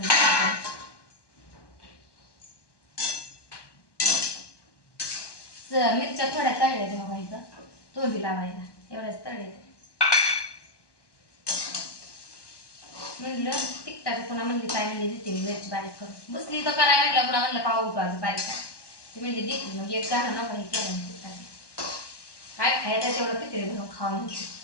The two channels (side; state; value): right; late; 1.1 ms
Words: मिरच्या थोड्या तळल्या तेव्हा व्हायचं तोंडी लावायला एवढ्याच तळले. म्हणलं तिकटाचं पुन्हा म्हणली काय म्हणली देते मी मिरची बारीक करून बसली तर करायला म्हटलं पुन्हा म्हणलं का उठवायचं बारीक काय ती म्हणजे देते मग एक गाणं नको हे केलं तिकटाचं काय खायचं तेवढं पितळी भरून खाऊन होती.